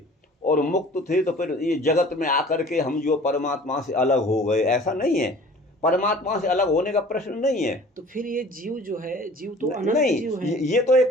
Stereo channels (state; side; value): normal; both; correlation 0.47